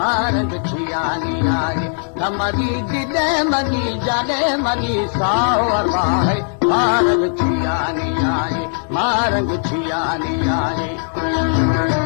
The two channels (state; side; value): silent; right; 67 dB below the other